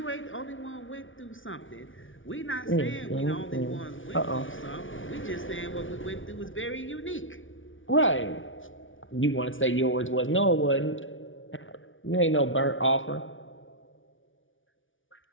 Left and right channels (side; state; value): right; late; 0.57 ms